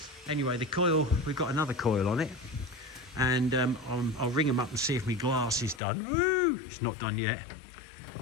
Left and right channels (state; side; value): drops out; right; at 5.8 s